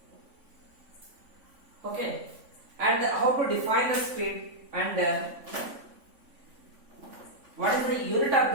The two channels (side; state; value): left; late; 3.5 ms